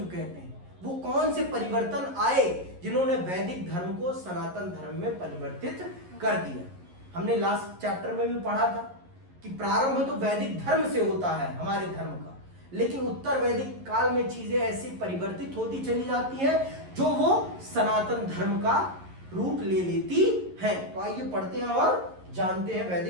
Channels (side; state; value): left; late; 11 ms